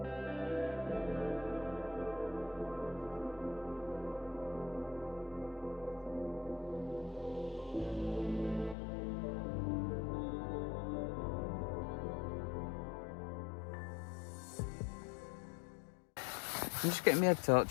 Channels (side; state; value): right; drops out; at 8.8 s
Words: I'm just getting my head